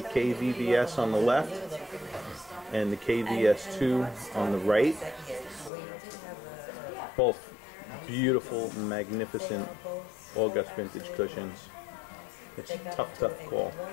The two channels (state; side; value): drops out; right; at 5.7 s